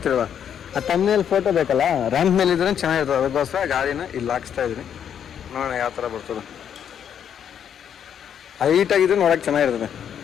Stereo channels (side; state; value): right; quieter; 8.7 dB